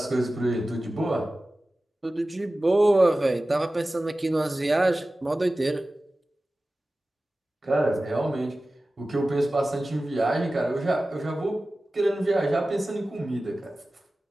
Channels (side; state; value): both; normal; correlation 0.96